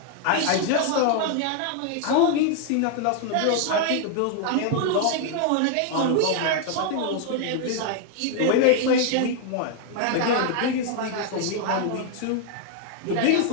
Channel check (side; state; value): both; different; correlation 0.00